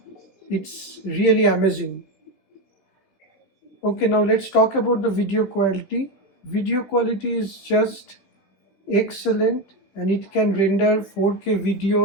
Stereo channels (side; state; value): right; late; 16 ms